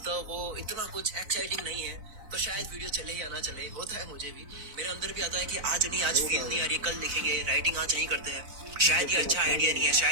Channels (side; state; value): left; late; 4.0 ms